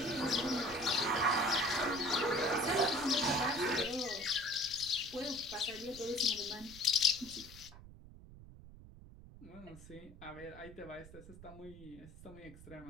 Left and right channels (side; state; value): right; noise; rumble, 17 dB below the sound